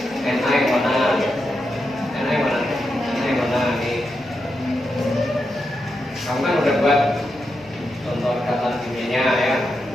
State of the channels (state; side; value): normal; both; correlation 0.86